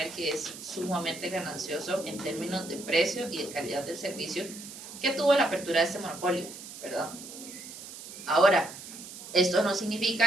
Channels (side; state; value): right; noise; hiss, 13 dB below the sound